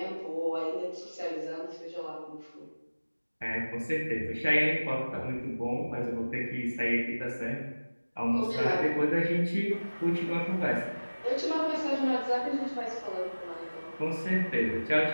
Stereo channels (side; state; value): both; inverted; correlation -1.00